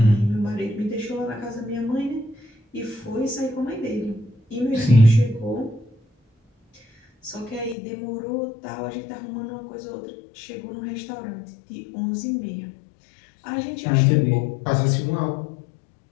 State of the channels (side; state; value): right; drops out; at 7.8 s